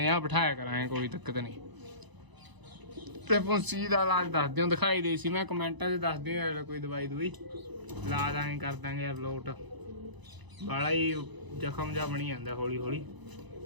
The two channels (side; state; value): left; late; 1.0 ms